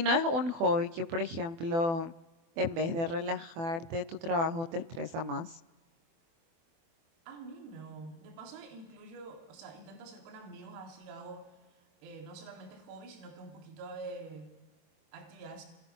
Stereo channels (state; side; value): late; left; 24 ms